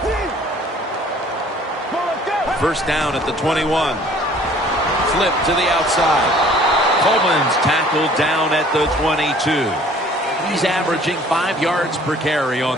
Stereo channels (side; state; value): both; normal; correlation 0.54